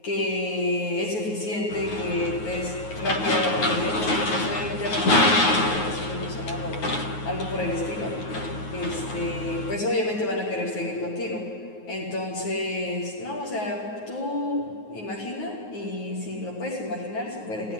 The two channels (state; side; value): late; right; 9.4 ms